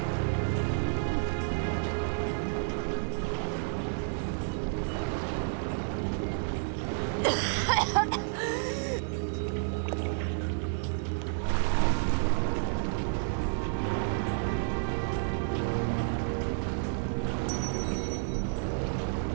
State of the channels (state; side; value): silent; left; digital silence